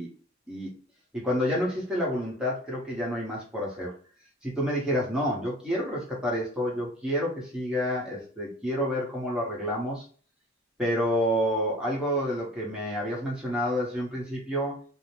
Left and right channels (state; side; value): normal; both; correlation 0.44